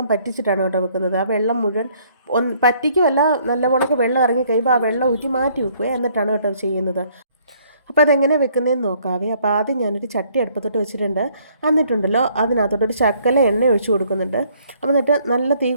പറ്റിച്ചിട്ടാണ് കേട്ടോ വെക്കുന്നത്. ആ വെള്ളം മുഴുവൻ പറ്റിക്കുമല്ല, നല്ലവണ്ണക്ക് വെള്ളം ഇറങ്ങി കഴിയുമ്പോൾ ആ വെള്ളം ഊറ്റി മാറ്റി വെക്കുക, എന്നിട്ടാണ് കേട്ടോ ചെയ്യുന്നത്. അപ്പോൾ അതെങ്ങനെ വെക്കുന്നതെന്ന് നോക്കാവേ. അപ്പോൾ ആദ്യം ഞാനൊരു ചട്ടി അടുപ്പത്തോട്ട് വെച്ചിട്ടുണ്ട്. എന്നിട്ടുണ്ടല്ലോ അതിനകത്തോട്ടൊരു ശകല എണ്ണ ഒഴിച്ച് കൊടുക്കുന്നുണ്ട്. അപ്പോൾ എന്നിട്ട് നല്ല തീ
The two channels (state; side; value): inverted; both; correlation -0.63